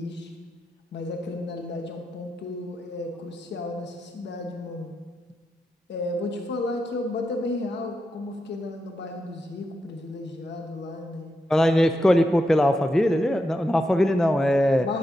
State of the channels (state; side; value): normal; both; correlation 0.85